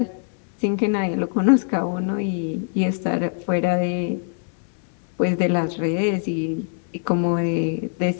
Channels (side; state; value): right; silent; 64 dB below the other